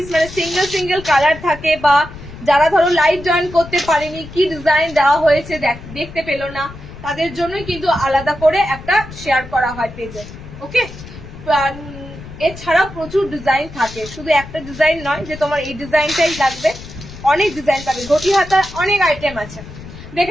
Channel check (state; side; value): noise; left; rumble, 15 dB below the sound